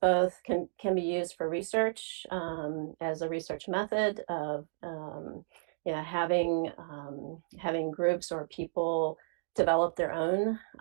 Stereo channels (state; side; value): silent; left; digital silence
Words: both can be used for research as a research method of having groups or people develop their own